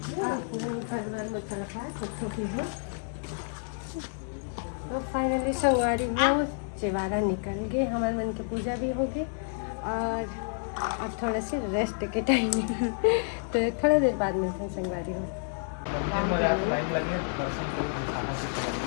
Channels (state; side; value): silent; right; digital silence